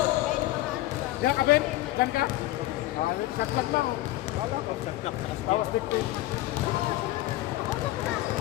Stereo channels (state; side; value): quieter; right; 16.5 dB